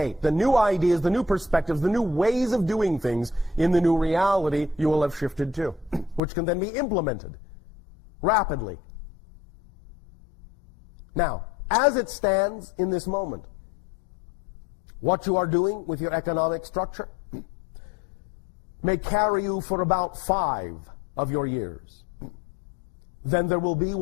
the new ideas, the new perspectives, the new ways of doing things in the new reality you will have shifted to, which can then be implemented rapidly. Now, as it stands in this moment, what you are doing with your economic structure may carry you for about 5 of your years. Then there will be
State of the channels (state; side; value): drops out; right; at 6.2 s